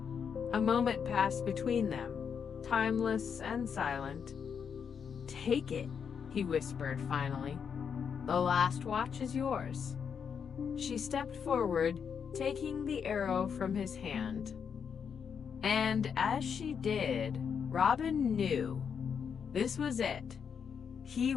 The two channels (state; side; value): quieter; right; 6.9 dB